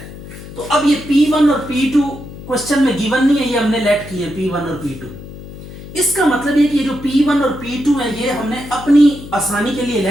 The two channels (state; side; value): noise; left; hum, 14 dB below the sound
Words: तो अब ये P1 और P2 क्वेश्चन में गिवन नहीं है, ये हमने लेट किए P1 और P2। इसका मतलब ये कि ये जो P1 और P2 है ये हमने अपनी आसानी के लिए